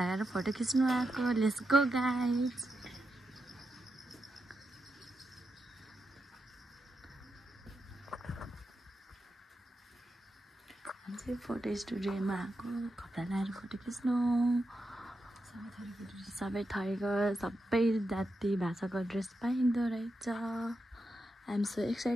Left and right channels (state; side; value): normal; both; correlation 0.87